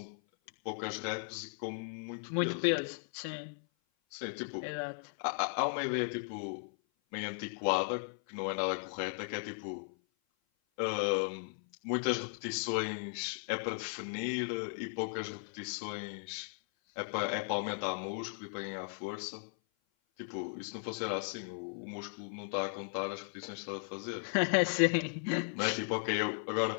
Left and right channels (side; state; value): right; silent; 53 dB below the other